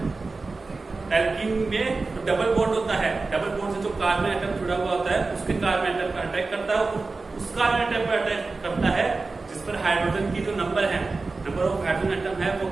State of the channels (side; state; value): left; quieter; 3.8 dB